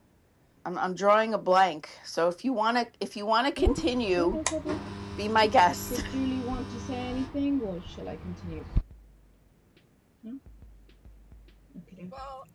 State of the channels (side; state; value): both; identical; correlation 1.00